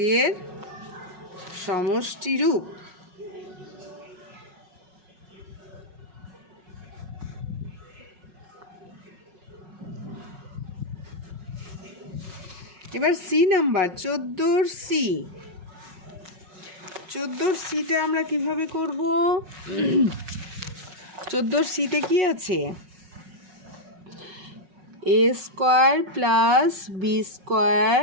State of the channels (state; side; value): late; left; 5.4 ms